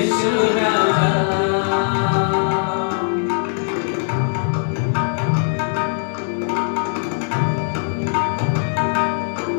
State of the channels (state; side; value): silent; right; 64 dB below the other